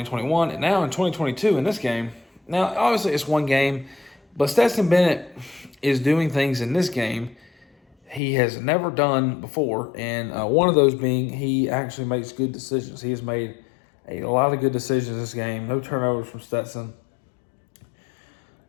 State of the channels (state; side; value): drops out; right; at 8.2 s